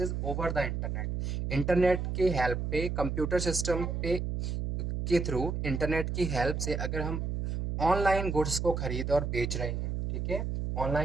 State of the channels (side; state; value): right; noise; hum, 2 dB below the sound